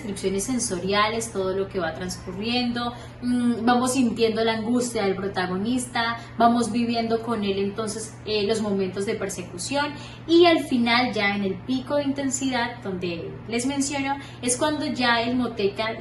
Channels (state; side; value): identical; both; correlation 1.00